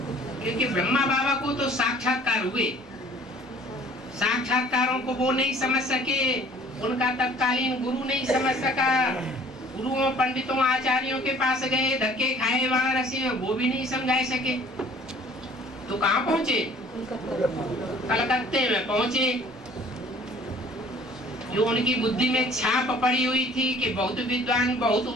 क्योंकि ब्रह्मा बाबा को तो साक्षात्कार हुए, साक्षात्कारों को वो नहीं समझ सके, उनका तत्कालीन गुरु नहीं समझ सका। गुरुओं पंडितों आचार्यों के पास गए, धक्के खाए वाराणसी में, वो भी नहीं समझा सके। तो कहाँ पहुंचे? कलकत्ते में पहुंचे। जो उनकी बुद्धि में छाप पड़ी हुई थी कि बहुत विद्वान, बहुत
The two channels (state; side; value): normal; both; correlation 0.53